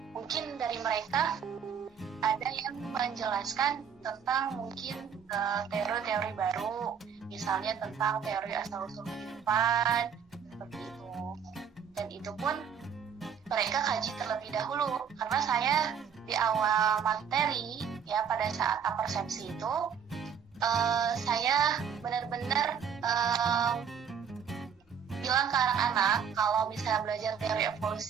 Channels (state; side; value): quieter; left; 7.4 dB